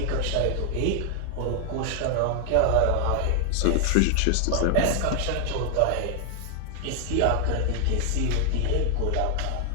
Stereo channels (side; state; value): both; different; correlation 0.00